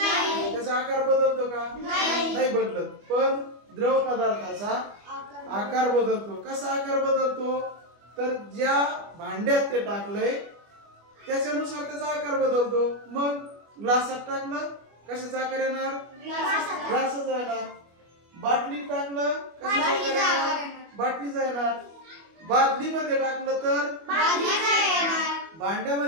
त्याचा आकार बदलतो का? नाही बदलत. पण द्रव पदार्थाचा आकार बदलतो. कसा आकार बदलतो? तर ज्या भांड्यात ते टाकलंय त्याच्यानुसार त्याचा आकार बदलतो. मग ग्लासात टाकलं, कशाचा आकार येणार? ग्लासाचा येणार. बाटलीत टाकलं, कशाचा आकार येणार? बाटलीचा येणार. बादलीमध्ये टाकलं तर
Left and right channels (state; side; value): late; left; 25 ms